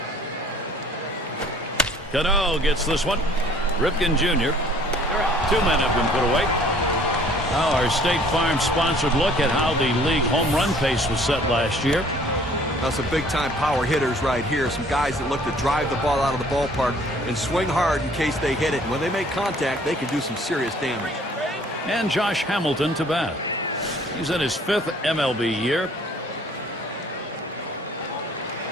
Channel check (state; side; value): normal; both; correlation 0.55